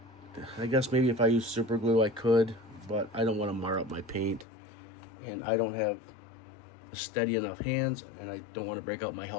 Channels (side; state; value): right; drops out; at 4.5 s